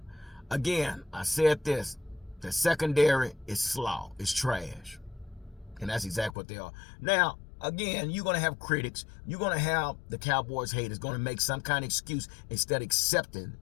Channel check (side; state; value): right; drops out; at 6.4 s